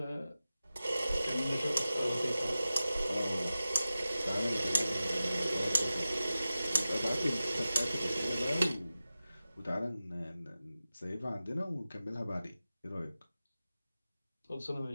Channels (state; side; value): inverted; both; correlation -0.95